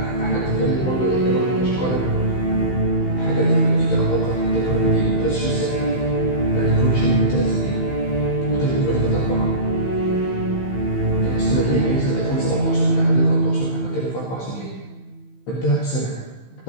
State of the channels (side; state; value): right; late; 15 ms